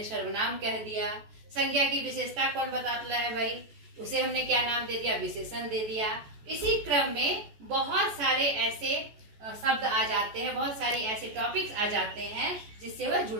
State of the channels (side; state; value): left; late; 14 ms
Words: सर्वनाम कह दिया। संज्ञा की विशेषता कौन बताता है भाई, उसे हमने क्या नाम दे दिया, विशेषण दे दिया। इसी क्रम में बहुत सारे ऐसे शब्द आ जाते हैं, बहुत सारे ऐसे टॉपिक्स आ जाते हैं जिससे वह